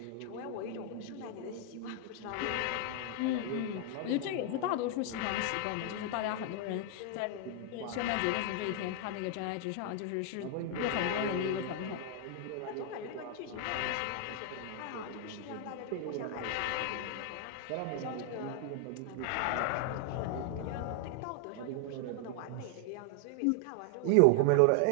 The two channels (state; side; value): different; both; correlation 0.00